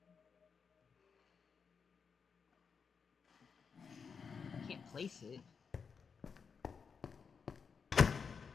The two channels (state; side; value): quieter; right; 5.9 dB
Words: I can't place it.